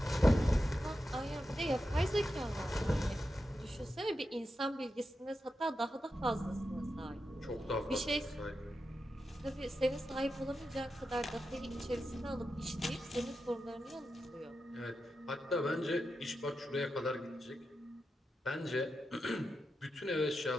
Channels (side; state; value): both; normal; correlation 0.89